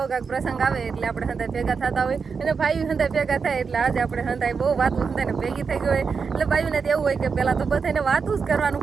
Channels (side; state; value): left; quieter; 5.5 dB